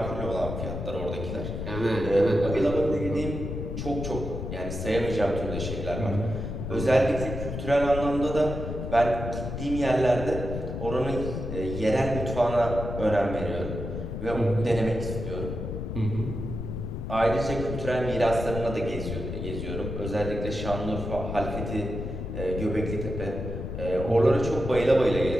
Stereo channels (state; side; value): noise; left; rumble, 5 dB below the sound